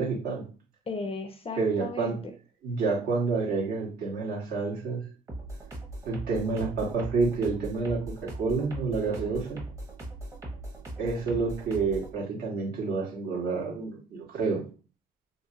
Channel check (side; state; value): left; quieter; 3.6 dB